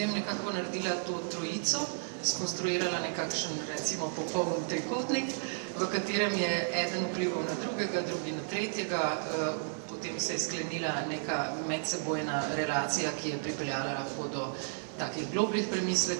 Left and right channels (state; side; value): silent; left; 56 dB below the other